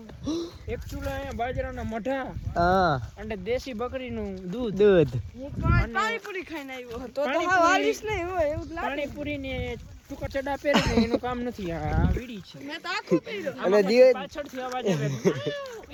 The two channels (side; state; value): both; identical; correlation 1.00